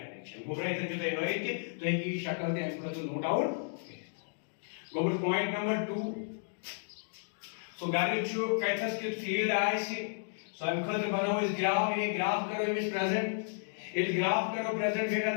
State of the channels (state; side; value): silent; right; digital silence